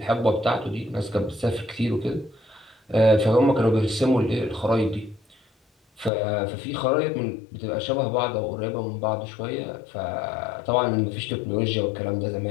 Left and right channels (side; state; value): right; drops out; at 6.1 s